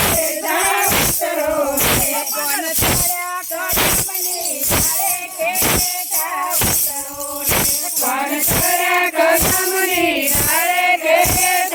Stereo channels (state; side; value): identical; both; correlation 1.00